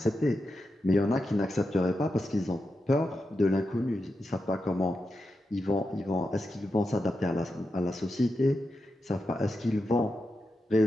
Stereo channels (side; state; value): both; normal; correlation 0.88